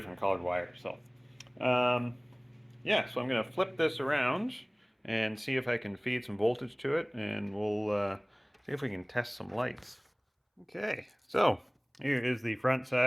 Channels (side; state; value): both; identical; correlation 1.00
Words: colored wires, so yeah, so I'm going to flip this around and see if I can feed some voltage to it, and we'll see if we can test some lights. Okay, so here is the front